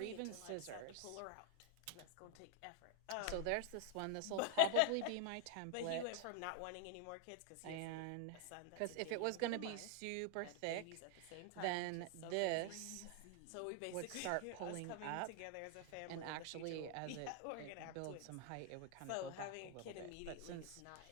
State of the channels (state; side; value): different; both; correlation 0.00